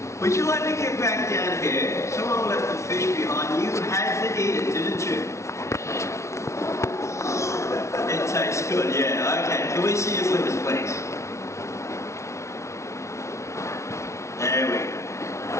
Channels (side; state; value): right; late; 0.14 ms